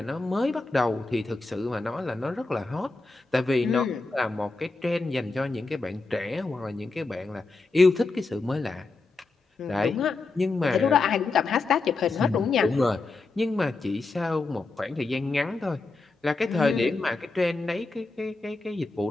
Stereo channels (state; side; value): quieter; right; 3.6 dB